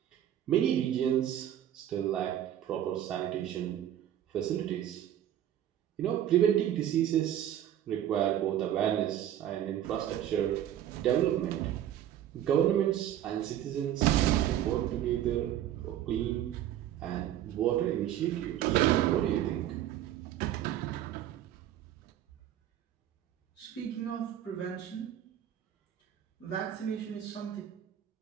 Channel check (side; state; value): left; quieter; 11.4 dB